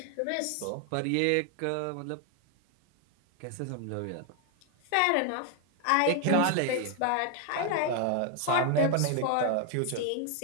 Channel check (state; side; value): different; both; correlation 0.00